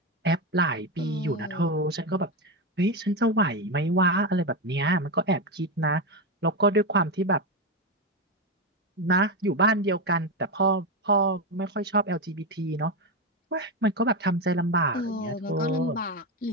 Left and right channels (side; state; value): both; normal; correlation 0.11